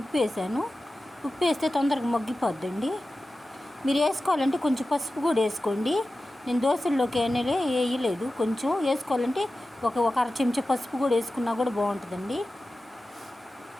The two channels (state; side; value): normal; both; correlation 0.94